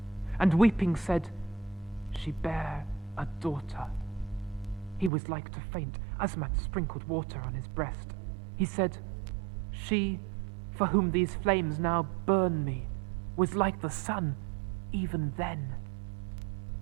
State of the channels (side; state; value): left; drops out; at 5.1 s